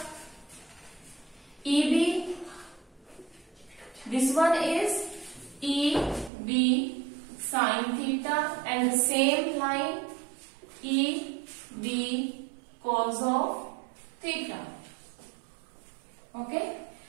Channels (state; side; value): drops out; left; at 6.3 s